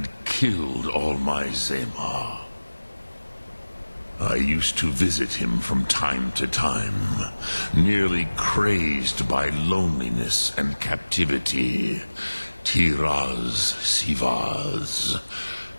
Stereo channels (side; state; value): both; inverted; correlation -1.00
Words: killed all my Zema. I used to visit him from time to time, nearly crazed by loneliness and captivity. Tiraz Sivaz.